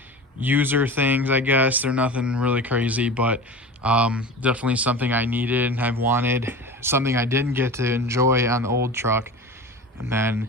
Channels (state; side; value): normal; both; correlation 0.32